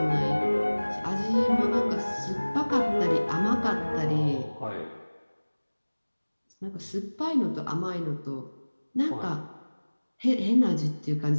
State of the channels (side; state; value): both; inverted; correlation -1.00